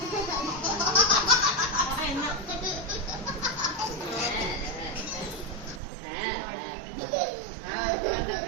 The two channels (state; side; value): drops out; left; at 5.8 s